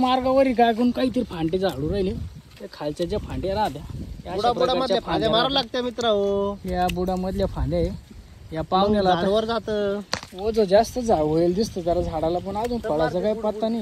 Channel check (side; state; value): both; identical; correlation 1.00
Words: काय कोण काहीतरी फांटे झाडू राहिले. ते खालच्या ज्या फांद्या राहत्या बुडामधल्या फांद्या मारायला लागत्या मित्र हो. या बुडामधल्या फांद्या आहे. या पाहुण्याला वर जात ओझ जास्त होईल दिसतं जरा झाडाला, पण अजून फळाचा काही पत्ता